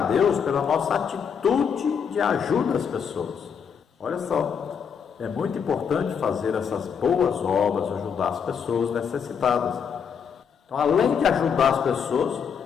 a Deus pela nossa atitude de ajuda às pessoas. Olha só, é muito importante fazer essas boas obras, ajudar as pessoas necessitadas. Então, além de ajudar as pessoas,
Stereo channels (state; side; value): quieter; right; 7.0 dB